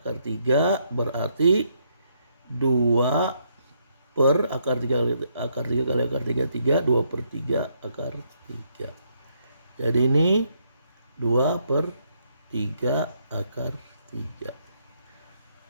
3 berarti 2/akar 3 kali akar 3 kali akar 3 3 2/3 akar 3. Jadi ini 2/3 akar 3.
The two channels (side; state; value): both; inverted; correlation -0.74